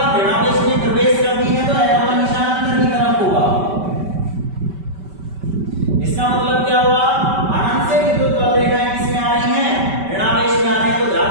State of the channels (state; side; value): late; left; 5.2 ms